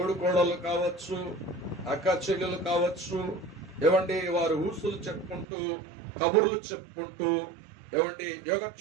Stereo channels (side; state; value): left; drops out; at 5.5 s